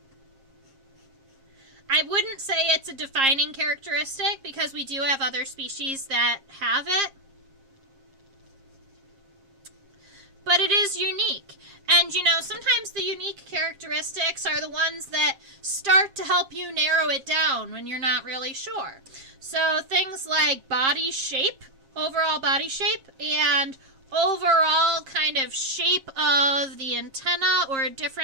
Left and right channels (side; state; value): left; late; 7.4 ms